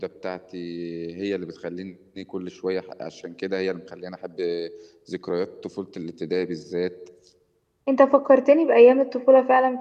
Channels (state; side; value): identical; both; correlation 1.00